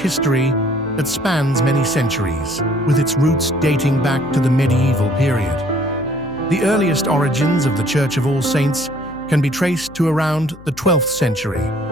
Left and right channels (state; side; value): noise; left; hum, 21 dB below the sound